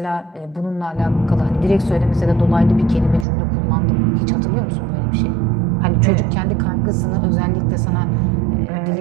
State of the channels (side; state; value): left; drops out; at 3.2 s